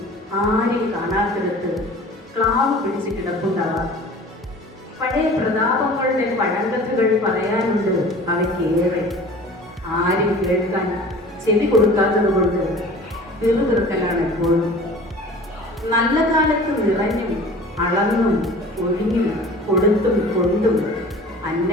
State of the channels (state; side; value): normal; both; correlation 0.43